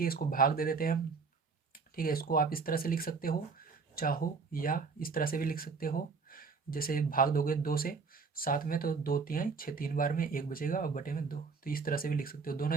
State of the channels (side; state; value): left; quieter; 4.9 dB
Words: इसको भाग दे देते हैं हम, ठीक है। इसको आप इस तरह से लिख सकते हो चाहो, या इस तरह से भी लिख सकते हो। जैसे भाग दोगे 2 से 7 में तो 2 तिहाई 6, 3 बार में 1 बचेगा और बटे में 2, तो इस तरह से भी लिख सकते हो।